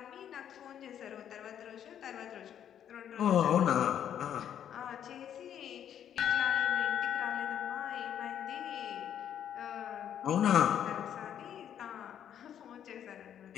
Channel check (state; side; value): quieter; right; 9.6 dB